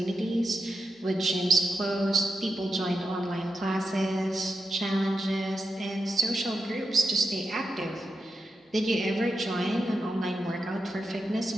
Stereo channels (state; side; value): normal; both; correlation 0.88